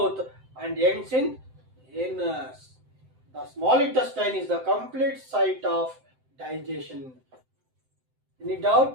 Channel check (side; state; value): left; late; 7.8 ms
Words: and ends in anus. The small intestine is the complete site of digestion. Any